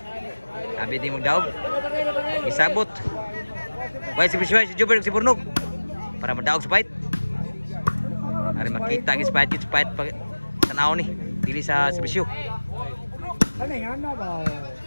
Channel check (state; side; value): inverted; both; correlation -1.00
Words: Sabi di magdaog. Isabot. Way si Jubber si Burnog para madaog sa fight. Ari makita gis fight pag tanaw ni dili sa serbisyo.